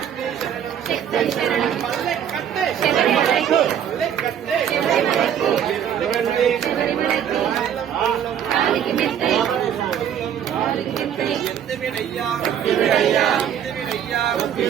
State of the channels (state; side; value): quieter; left; 9.2 dB